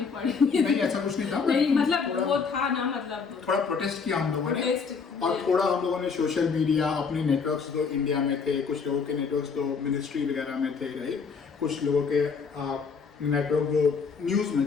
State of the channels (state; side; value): quieter; right; 5.4 dB